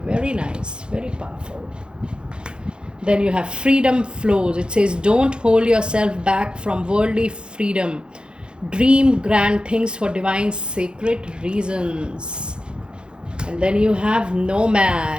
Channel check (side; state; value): left; late; 0.051 ms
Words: Very nice, very powerful. Then you have freedom flows. It says don't hold yourself back from worldly freedom. Dream grand things for divine sacred reasons. And then you have